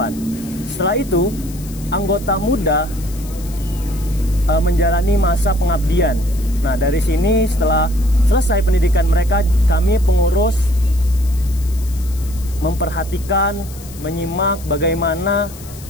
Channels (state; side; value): noise; left; hiss, 18 dB below the sound